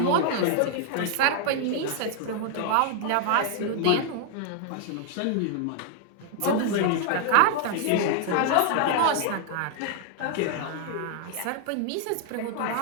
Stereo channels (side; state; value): both; different; correlation 0.00